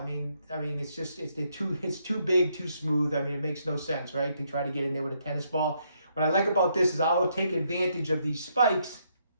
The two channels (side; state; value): both; inverted; correlation -0.75